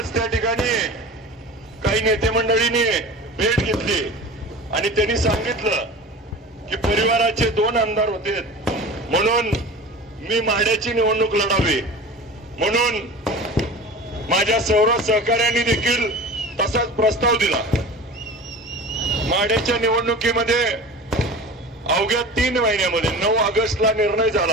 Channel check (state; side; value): normal; both; correlation 0.35